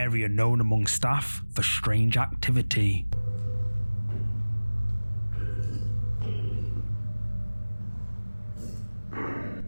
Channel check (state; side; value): inverted; both; correlation -1.00